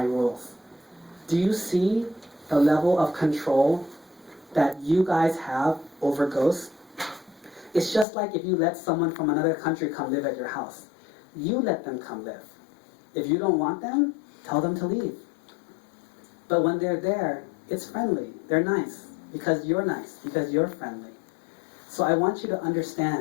rules. Do you see the level of control that you guys have over ghosts? It's just like if you let someone from another country come live at your house. You let them come live. If you don't want them, tell them to leave. But when they're there, it's friendly. They're nice because you're nice, because you're friendly. So I want you to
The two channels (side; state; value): right; drops out; at 8.1 s